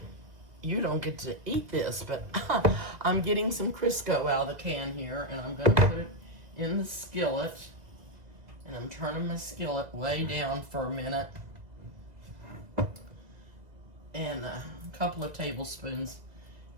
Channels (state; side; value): late; left; 2.0 ms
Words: you don't get to eat this, but I'm getting some Crisco out of the can here and I'm going to put it in the skillet. And I'm turning my skillet way down for a minute. And a couple of tablespoons